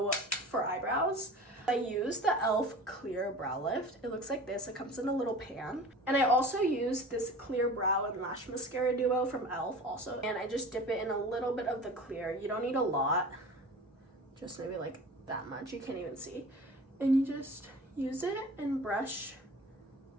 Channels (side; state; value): both; normal; correlation 0.38